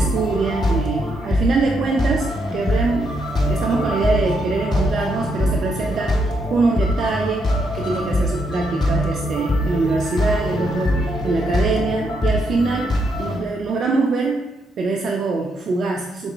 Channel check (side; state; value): both; normal; correlation 0.78